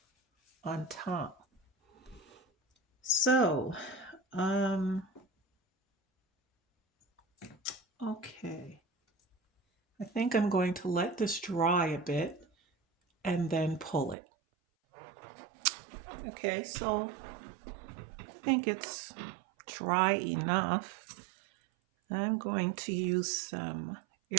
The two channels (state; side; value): drops out; left; at 14.2 s